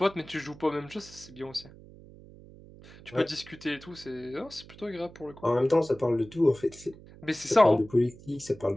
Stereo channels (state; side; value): noise; right; hum, 20 dB below the sound